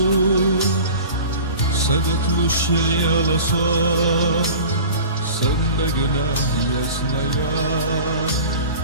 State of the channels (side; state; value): both; inverted; correlation -0.38